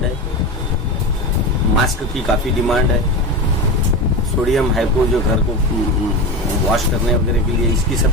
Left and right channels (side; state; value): both; normal; correlation 0.22